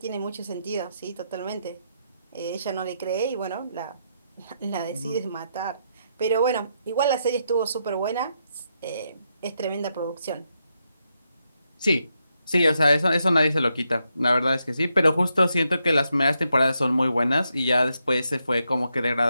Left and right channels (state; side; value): inverted; both; correlation -0.81